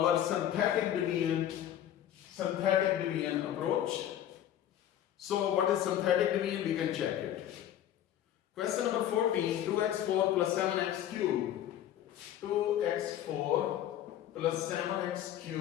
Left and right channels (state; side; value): quieter; right; 11.3 dB